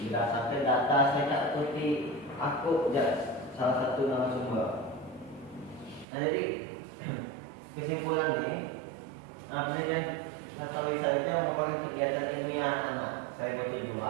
berdasarkan data saya tak Putih aku salah satu narasumber. Nah, jadi kesimpulan ini penelitian sastra lisan itu merupakan kegiatan ilmiah anak. Saya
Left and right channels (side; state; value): left; drops out; at 6.1 s